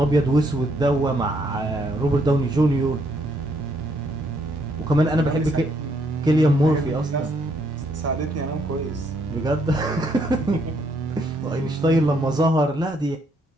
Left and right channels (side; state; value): both; normal; correlation 0.71